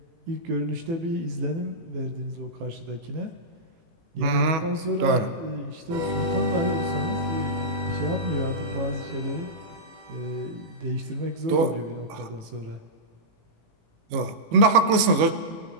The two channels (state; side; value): late; left; 19 ms